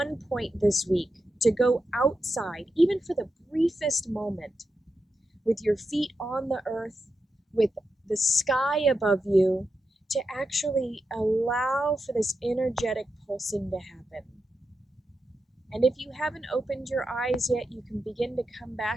point this week to go outside, even for the briefest moment, with your feet on the earth, with the sky above you, to actually allow for this energetic pulsing to happen. And if you haven't opened your eyes yet, you can begin to come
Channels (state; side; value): normal; both; correlation 0.88